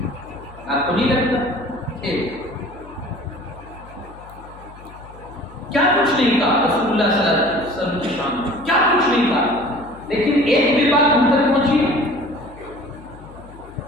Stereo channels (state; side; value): noise; left; hum, 19 dB below the sound